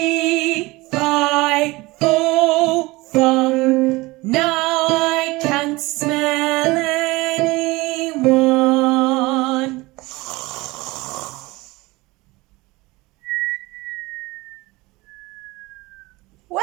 fi, fo, fum. Now I can't smell anyone.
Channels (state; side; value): quieter; left; 21.9 dB